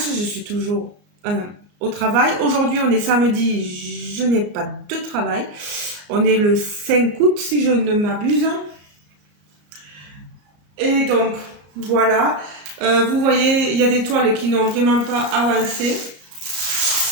je suis toujours au travail. Aujourd'hui, on est samedi, je n'ai pas de travail. On est le 5 août, si je ne m'abuse. Et donc, voilà. Vous voyez, il y a des toiles qui n'ont vraiment pas avancé,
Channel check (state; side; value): late; left; 34 ms